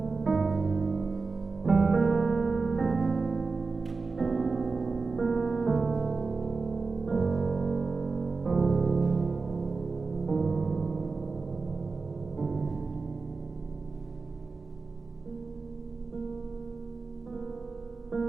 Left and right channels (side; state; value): left; quieter; 4.2 dB